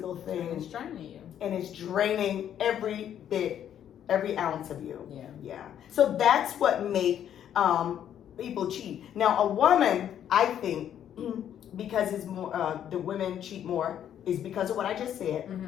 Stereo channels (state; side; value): quieter; right; 10.0 dB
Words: thing. It's draining you. And it's draining every bit, every ounce of you. Yeah. So that's what make people cheat. Now, a woman, I think, because it's more, the women cheat more, is because of what I just said,